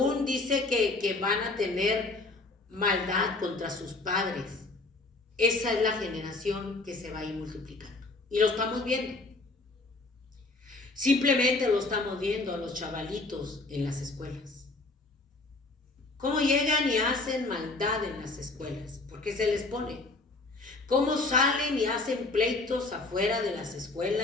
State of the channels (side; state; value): right; quieter; 3.3 dB